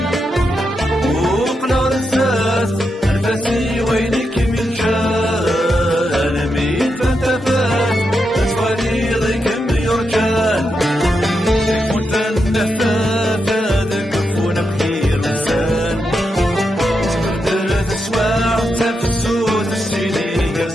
وقنا رساس الفاسي وينك من جال ميت فانتفات أتواني ضيق بيرجال كنت النفاف هذا كفونا بخير لسان سكرت الأسواع تفسود السيدي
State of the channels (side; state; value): both; normal; correlation 0.85